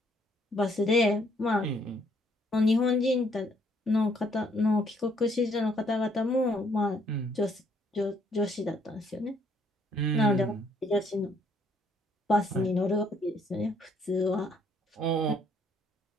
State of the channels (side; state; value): both; normal; correlation 0.67